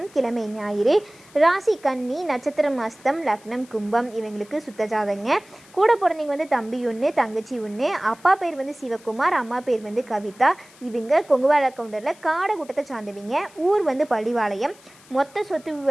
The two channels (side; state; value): left; noise; hiss, 25 dB below the sound